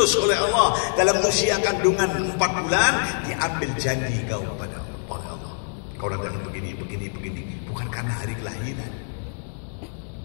oleh Allah dalam usia kandungan 4 bulan, diambil janji kau pada Allah. Kau datang begini, bukan karena hari kelahiran.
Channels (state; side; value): silent; right; digital silence